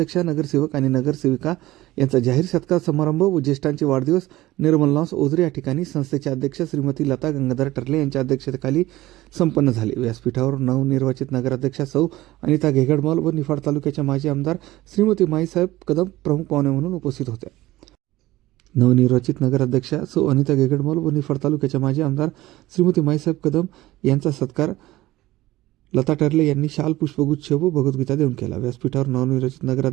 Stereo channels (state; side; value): quieter; left; 17.1 dB